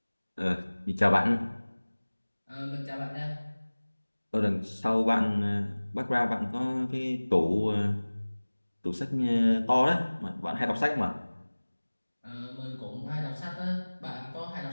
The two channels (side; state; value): both; inverted; correlation -1.00